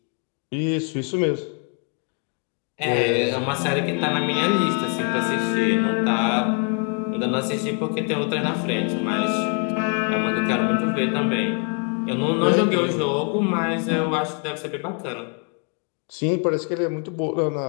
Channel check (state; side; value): quieter; right; 39.6 dB